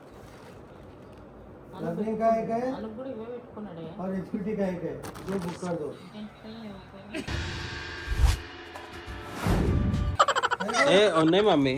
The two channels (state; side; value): identical; both; correlation 1.00